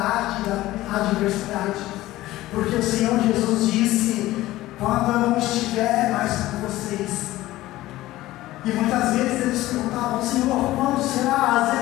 da adversidade. Porque o Senhor Jesus disse: quando eu não estiver mais com vocês. E muitas vezes eles perguntavam: Senhor, quando será? Às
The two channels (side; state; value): right; quieter; 16.5 dB